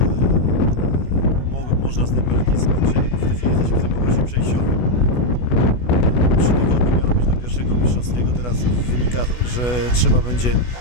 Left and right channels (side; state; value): right; late; 16 ms